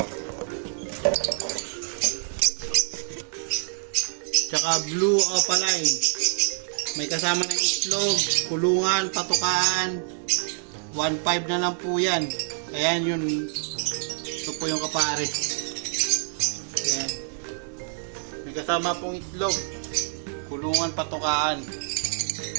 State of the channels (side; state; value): left; silent; 61 dB below the other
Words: Tsaka Blue Opaline. May kasama ng itlog, kulungan, patukaan. 1.5 na lang po yan. Ayan yun. Ito po yung kapares. Ayan. May kasama pong itlog, kulungan, patukaan.